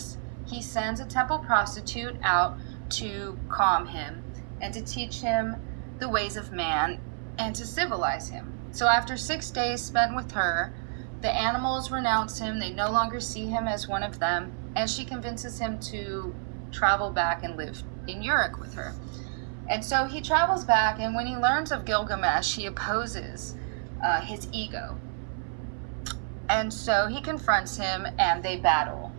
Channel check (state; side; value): silent; left; 59 dB below the other